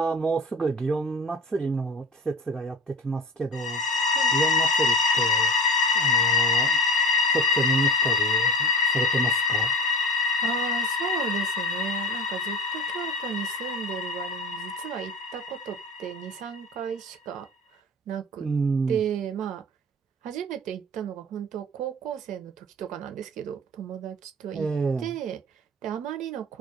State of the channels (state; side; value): normal; both; correlation 0.33